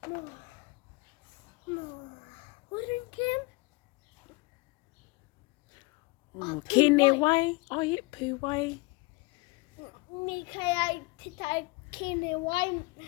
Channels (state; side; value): quieter; right; 25.7 dB